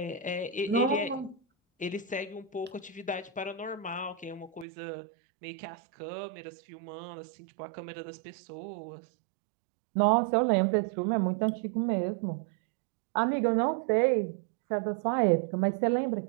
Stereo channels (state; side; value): drops out; left; at 4.7 s